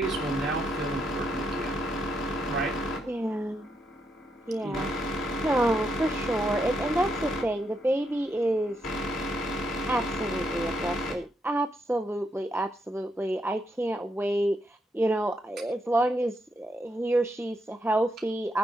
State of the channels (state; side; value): normal; both; correlation 0.79